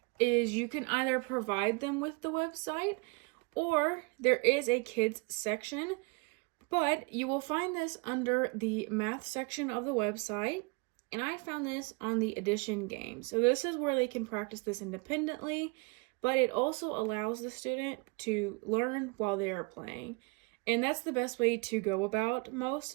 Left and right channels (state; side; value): quieter; left; 29.5 dB